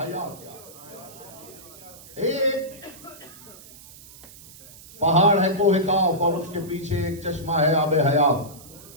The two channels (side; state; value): right; noise; hiss, 19 dB below the sound